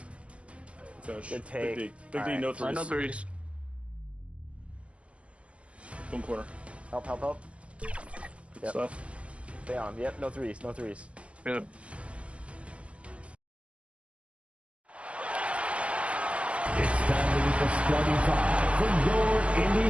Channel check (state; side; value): late; left; 0.061 ms